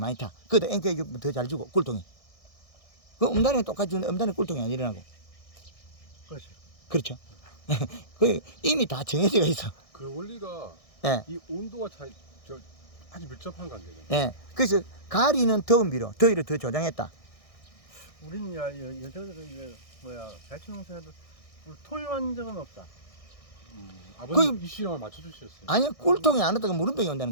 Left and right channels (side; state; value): right; late; 1.6 ms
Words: 타. 그것도 앵깨 주면 더 잘 주고 꿀통이. 그 음달에는 똑같이 주는데 음달에는 꿀통이 안 일어나고. 그렇지. 그렇죠. 그 이미 다 정해져 있어. 그 원리가 예. 이 온도와 차이 아주 밀접한 관계잖아요. 예. 그래서 가리는 더운 비로 더위를 더 조장했다. 우리는 여자들은 이제 배추 농사해도 토요한 적은 없다. 아버님 이 시험을 맞춰주셨어요. 아니요, 꿀통이 안 왔다가 물음병이